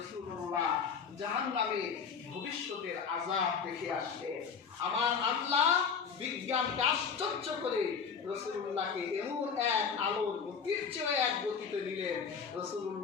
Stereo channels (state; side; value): quieter; right; 6.2 dB